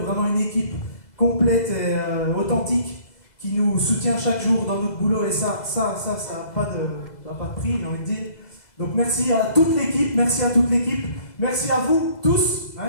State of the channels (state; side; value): late; right; 2.0 ms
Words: une équipe complète et authentique qui nous soutient chaque jour dans notre boulot. Et ça n'a pas de prix, j'ai envie de dire. Donc merci à toute l'équipe, merci à vous tous